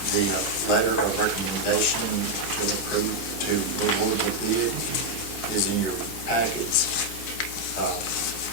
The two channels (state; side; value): normal; both; correlation 0.01